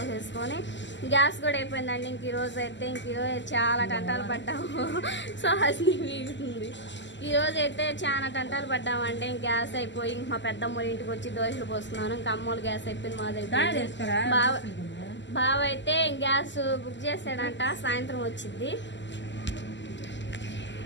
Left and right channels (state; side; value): late; right; 0.53 ms